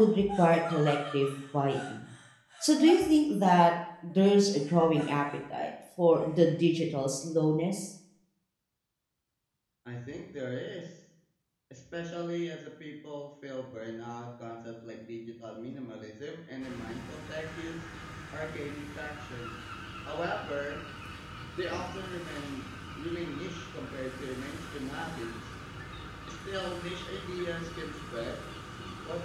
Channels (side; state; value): both; identical; correlation 1.00